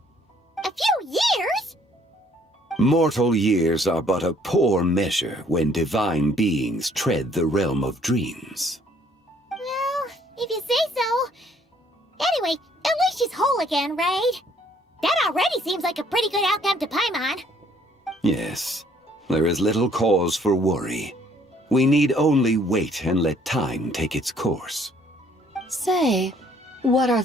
A few years? Mortal years are but a poor measure when divine beings tread the realm of dreams. Well, if you say so. Anyway, at least she's whole again, right? That already seems like a pretty good outcome to Paimon. Yes, there is little cause for worry. We need only wait and let time take its course. Say, what are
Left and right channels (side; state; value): both; normal; correlation 0.62